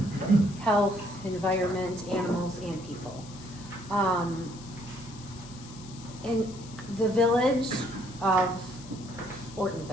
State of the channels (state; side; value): noise; left; hiss, 18 dB below the sound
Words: health, environment, animals, and people. In the village of